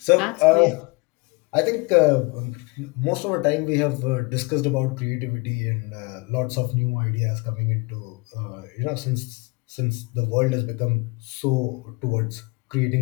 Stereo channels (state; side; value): quieter; right; 27.5 dB